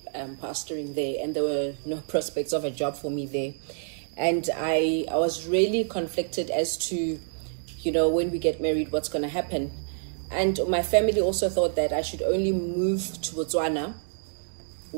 pastoring there, and there were no prospects of a job for me there. And I was really conflicted as to, you know, when we get married, what's going to happen. And my family also thought that I should only move to Botswana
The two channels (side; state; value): left; silent; 60 dB below the other